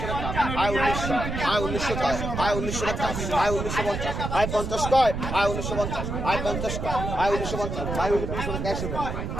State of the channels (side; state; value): right; noise; rumble, 4 dB below the sound